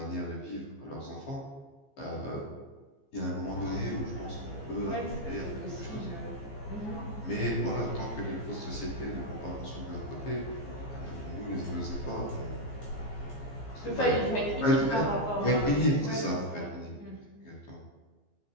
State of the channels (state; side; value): late; right; 15 ms